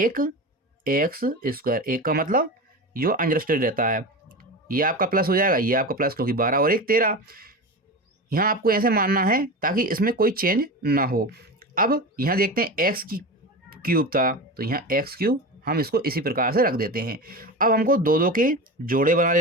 एक का मतलब जो अंडरस्टूड रहता है, ये आपका प्लस हो जाएगा, ये आपका प्लस, क्योंकि 12 और 1 13। यहाँ आपको ऐसे मानना है ताकि इसमें कोई चेंज ना हो। अब यहाँ देखते हैं एक्स की क्यूब था, तो यहाँ x³ हम इसको इसी प्रकार से रख देते हैं। अब हमको दो दो के जोड़े बना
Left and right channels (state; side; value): normal; both; correlation 0.26